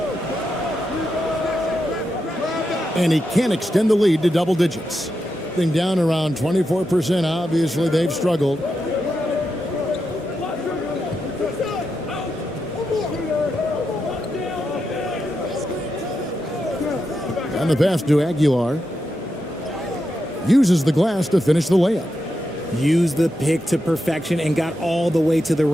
And he can't extend the lead to double digits. Thing down around 24%. Obviously, they've struggled. And the pass to Aguilar. Uses the glass to finish the layup. Used the pick to perfection and got all the way to the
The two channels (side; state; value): both; normal; correlation 0.86